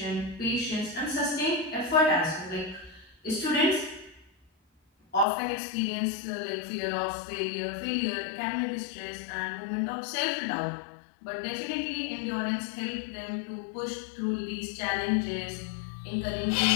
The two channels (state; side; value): drops out; right; at 5.2 s